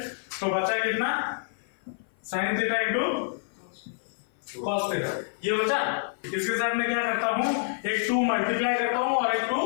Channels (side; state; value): right; silent; 55 dB below the other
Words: तो बचा कितना? sin theta into cos theta, ये बचा। इसके साथ मैं क्या करता हूं? एक 2 मल्टीप्लाई करता हूं और एक